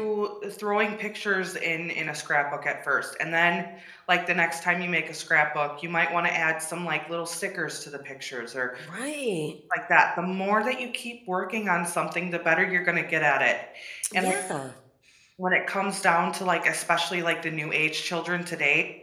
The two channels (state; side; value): identical; both; correlation 1.00